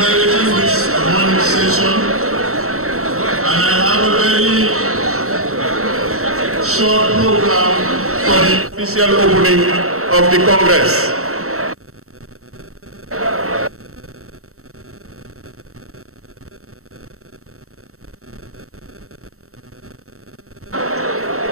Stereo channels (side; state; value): left; late; 0.64 ms